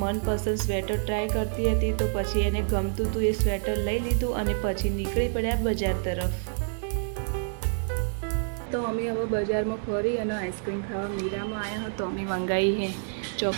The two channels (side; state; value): left; silent; 60 dB below the other